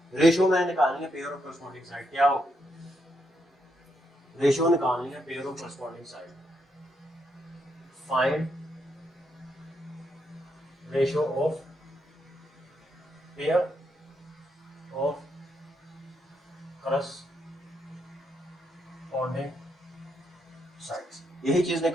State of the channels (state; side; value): normal; both; correlation 0.79